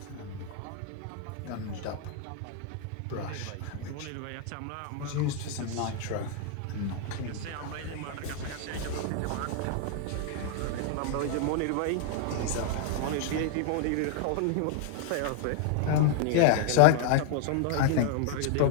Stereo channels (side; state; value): both; different; correlation -0.01